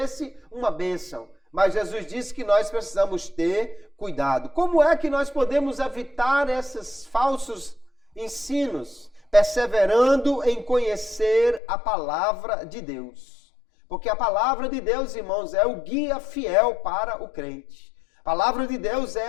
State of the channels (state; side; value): drops out; right; at 11.6 s